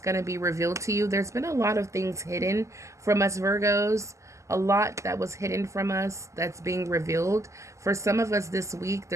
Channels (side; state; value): left; late; 0.15 ms